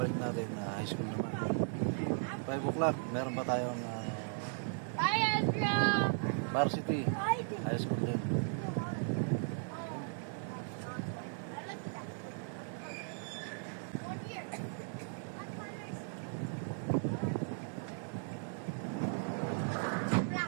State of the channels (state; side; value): silent; left; 53 dB below the other